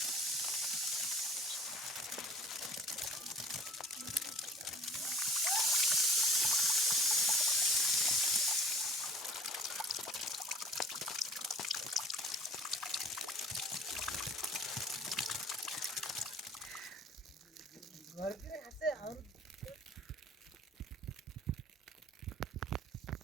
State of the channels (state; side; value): normal; both; correlation 0.47